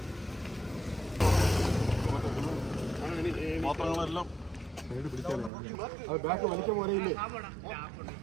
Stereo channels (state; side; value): drops out; left; at 5.5 s